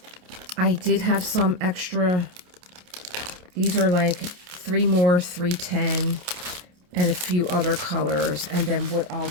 I did have some extra. These are like 3 more 310 and a few other colors. And then what I'll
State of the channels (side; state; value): left; late; 28 ms